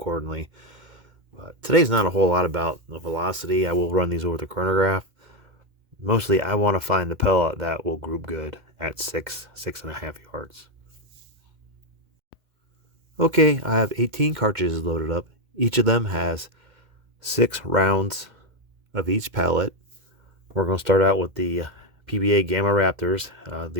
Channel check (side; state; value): left; late; 2.1 ms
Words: But today's not a whole lot about the velocity. I will run these over the chronograph. Mostly, I want to find the pellet that will group good at 6.5 yards. Okay, I have 18 cartridges loaded up. Each of them has 6 rounds of each pellet. We're going to start out with the PBA Gamma Raptors.